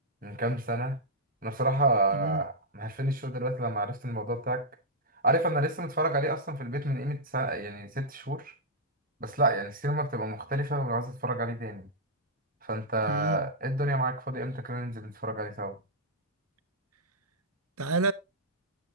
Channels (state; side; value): normal; both; correlation -0.07